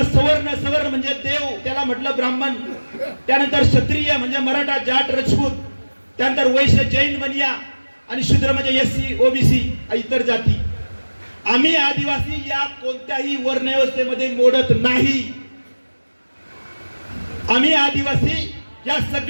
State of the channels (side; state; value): both; inverted; correlation -1.00